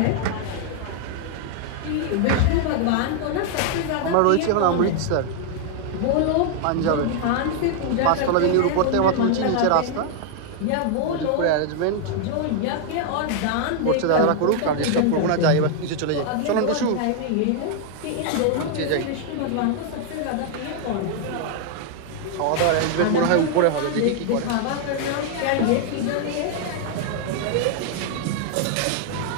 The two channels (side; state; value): both; different; correlation 0.00